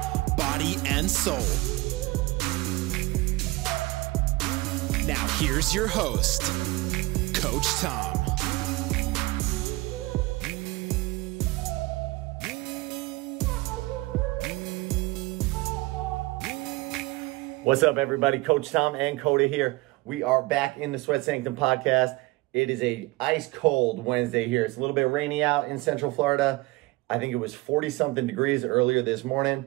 body, and soul. Now here's your host, Coach Tom. What's up, everybody? Coach Tom and Coda here. We are back in the Sweat Sanctum podcast. It is a ice cold Wednesday here. It's a little bit rainy out in Central Florida. I think it was 40-something degrees earlier this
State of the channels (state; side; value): quieter; left; 21.7 dB